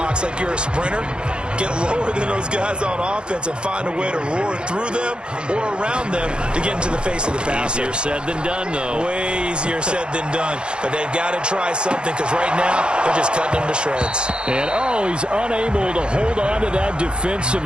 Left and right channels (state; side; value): late; left; 0.053 ms